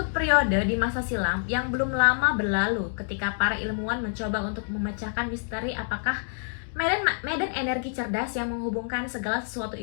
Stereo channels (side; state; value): right; silent; digital silence